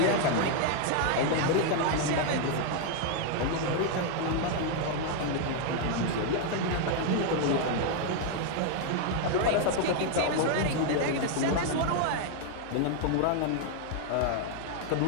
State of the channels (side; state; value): both; different; correlation 0.00